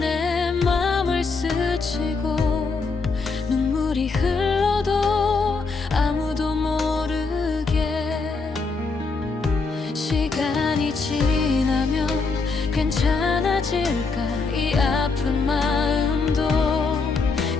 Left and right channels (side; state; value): right; quieter; 4.3 dB